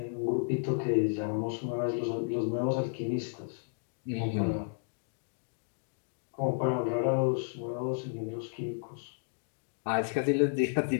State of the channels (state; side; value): silent; right; digital silence